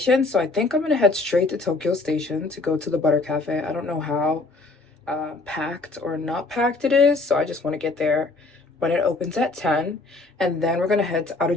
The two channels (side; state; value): right; quieter; 3.3 dB